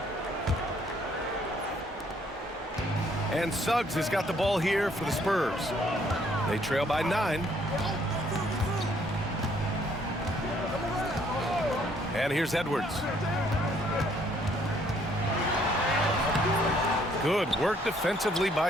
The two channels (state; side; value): normal; both; correlation 0.65